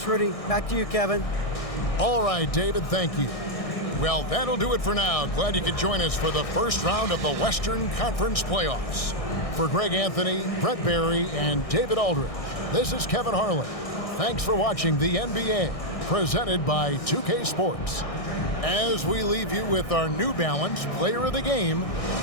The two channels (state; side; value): late; right; 1.6 ms